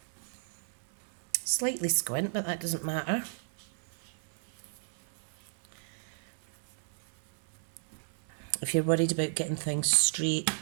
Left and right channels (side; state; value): left; silent; 55 dB below the other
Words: Slightly squint, but that doesn't matter. if you're worried about getting things straight,